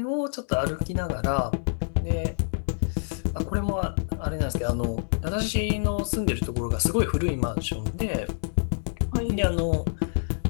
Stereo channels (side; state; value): right; silent; digital silence